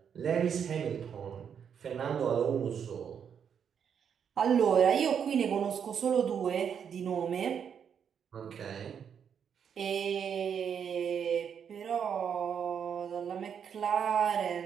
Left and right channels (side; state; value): left; quieter; 7.7 dB